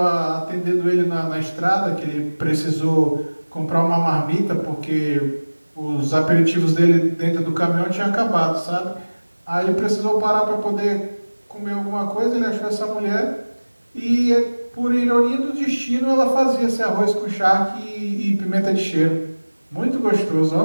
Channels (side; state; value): both; inverted; correlation -1.00